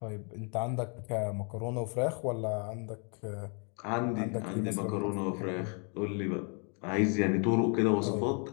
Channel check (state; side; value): quieter; right; 38.1 dB